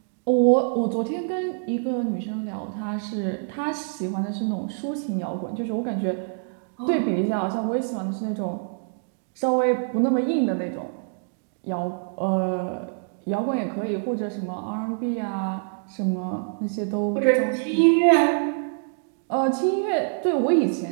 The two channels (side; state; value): left; silent; digital silence